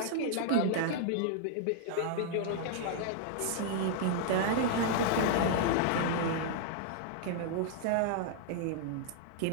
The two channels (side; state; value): both; different; correlation -0.01